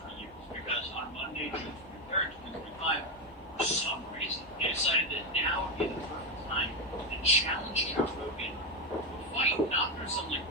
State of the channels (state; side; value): normal; both; correlation 0.09